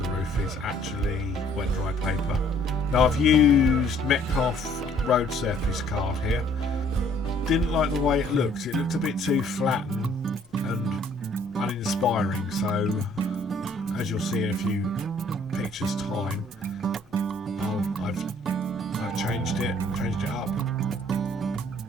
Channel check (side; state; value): both; normal; correlation 0.60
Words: the roof is actually wet dry paper. Now I've used Metcalf road surface card here. Didn't like the way it looked. It looked a bit too flat and uninspiring, so as you'll see in a few pictures time, I've changed it up.